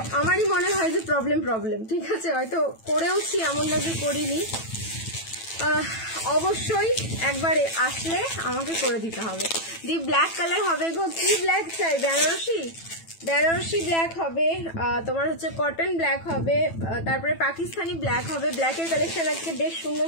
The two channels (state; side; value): late; right; 9.1 ms